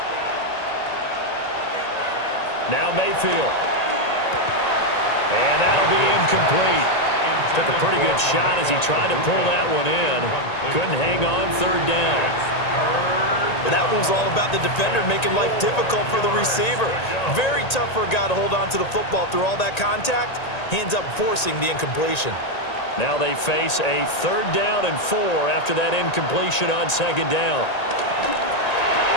Now Mayfield. And that'll be incomplete. Took a pretty good shot as he tried to pull that one in. Couldn't hang on. 3rd down. Well, that one was all about the defender making life difficult for the receiver. Very tough for a guy to hold on to the football through all that contact. He ends up forcing the incompletion. Now they face a 3rd down and 4 after that incompletion on 2nd down.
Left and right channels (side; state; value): right; late; 1.9 ms